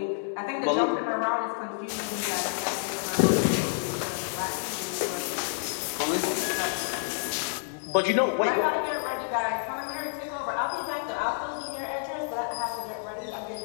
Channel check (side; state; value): right; silent; digital silence